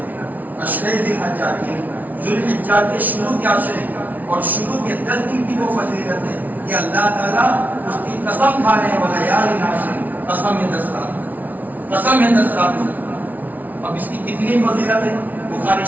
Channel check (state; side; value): late; left; 0.077 ms